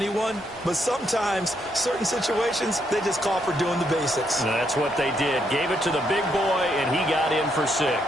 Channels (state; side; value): normal; both; correlation 0.76